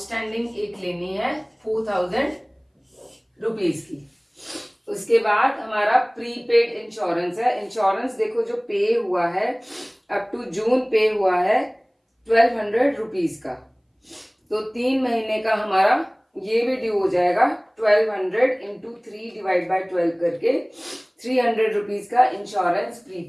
एक लेनी है 4,000 रुपीज की। उसके बाद हमारा प्रीपेड इंश्योरेंस है। इंश्योरेंस देखो जो पे हुआ है अप टू जून पे हुआ है 1,200 रुपीज का। तो 3 महीने का हमारा ये भी ड्यू हो जाएगा 1,200 इंटू 3 डिवाइड बाय 12 करके 300 रुपीज का इंश्योरेंस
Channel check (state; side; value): identical; both; correlation 1.00